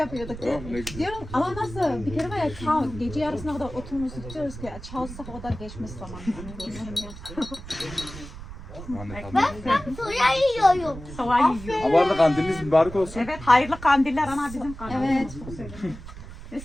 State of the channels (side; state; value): right; noise; rumble, 13 dB below the sound